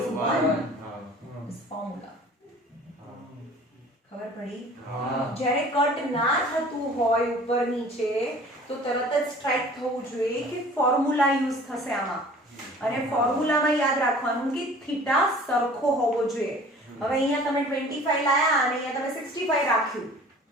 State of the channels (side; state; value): both; normal; correlation 0.47